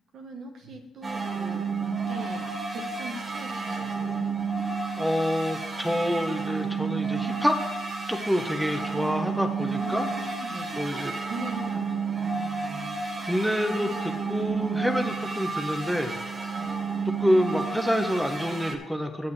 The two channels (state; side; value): normal; both; correlation 0.88